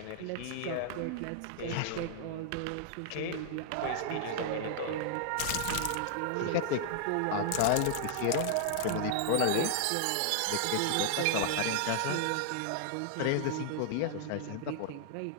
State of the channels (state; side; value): different; both; correlation -0.01